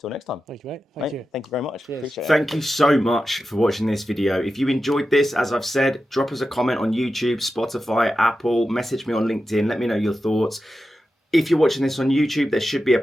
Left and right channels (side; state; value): both; normal; correlation 0.91